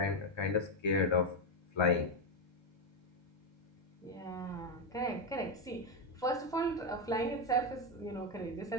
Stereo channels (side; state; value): both; normal; correlation 0.07